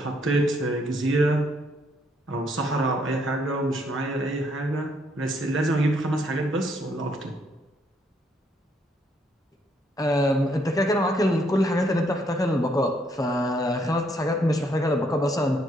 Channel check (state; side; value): normal; both; correlation 0.71